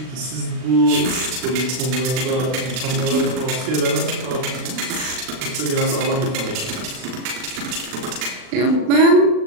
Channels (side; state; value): left; late; 39 ms